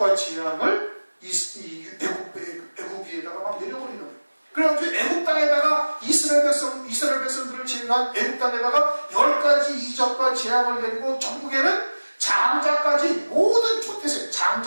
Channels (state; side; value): inverted; both; correlation -1.00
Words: 재앙을 애굽 위에다가 막 내려버리는 거예요. 그래가지고 애굽 땅에다가 이스라엘 백성들을 제외한 애굽 땅에다가 10가지 이적과 재앙을 내리고 전국에는 장자까지 모든 초태생,